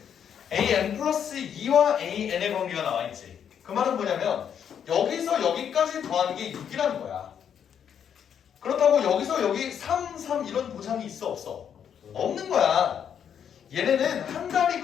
an 플러스 2와 an의 관계가 나와있지. 그 말은 뭐냐면 여기서 여기까지 더하는 게 6이라는 거야. 그렇다고 여기서 여기 3, 3 이런 보장이 있어 없어? 없는 거야. 얘네는 한 달이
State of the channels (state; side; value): quieter; right; 8.4 dB